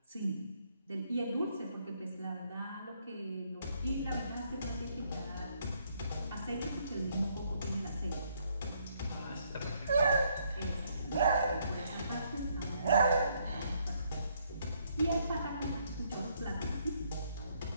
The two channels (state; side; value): inverted; both; correlation -0.70